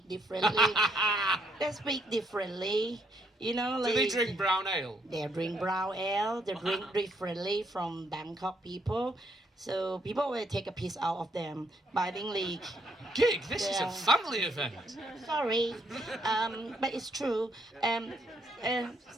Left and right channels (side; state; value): both; normal; correlation 0.73